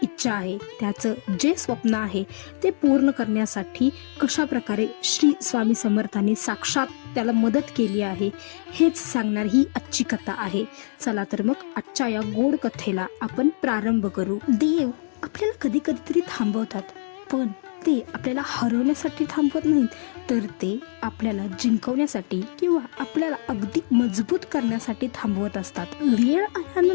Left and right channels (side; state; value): right; silent; digital silence